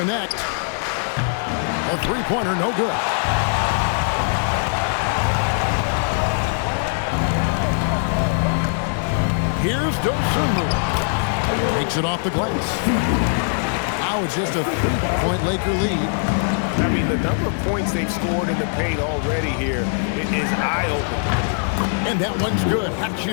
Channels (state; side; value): silent; right; digital silence